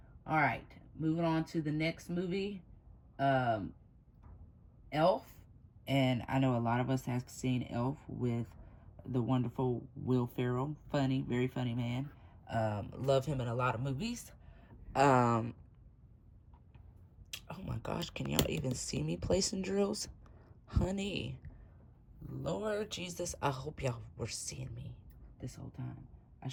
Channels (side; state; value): both; identical; correlation 1.00